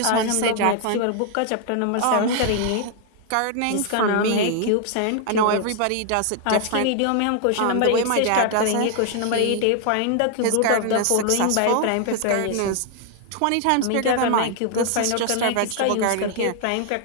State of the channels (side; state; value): both; different; correlation 0.00